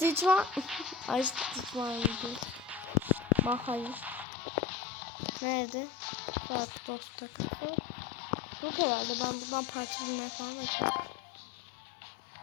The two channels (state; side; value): drops out; right; at 4.2 s